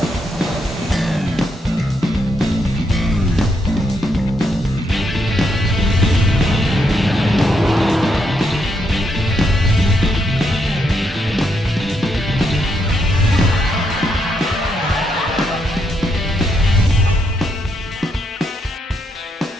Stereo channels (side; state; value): both; normal; correlation 0.78